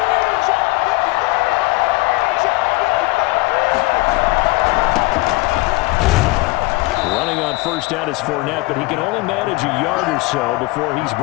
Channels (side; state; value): right; quieter; 22.7 dB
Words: Running on first down is Fournette, but he can only manage a yard or so before he's